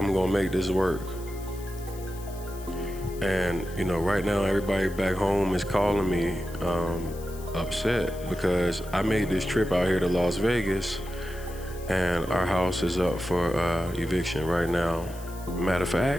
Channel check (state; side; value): noise; left; hiss, 19 dB below the sound